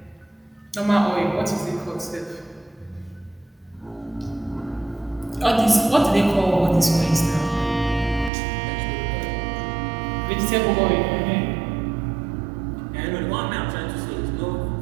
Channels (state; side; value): drops out; left; at 8.3 s